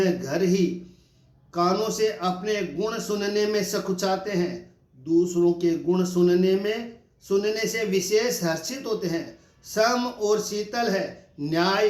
घर ही, कानों से अपने गुण सुनने में सकुचाते हैं, दूसरों के गुण सुनने से विशेष हर्षित होते हैं, सम और शीतल है, न्याय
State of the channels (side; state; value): both; identical; correlation 1.00